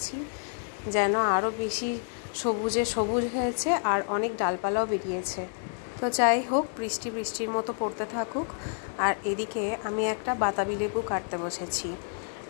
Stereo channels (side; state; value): right; silent; 59 dB below the other